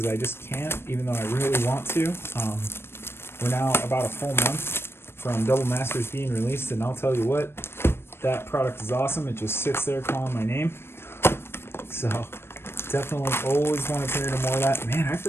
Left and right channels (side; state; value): right; late; 0.12 ms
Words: I just can't, even though I really want to. We're now about a full month from Double Masters being released, and I'll tell you what, that product is awesome. It just sits there calling my name. So definitely always want to turn into more of that. Man, I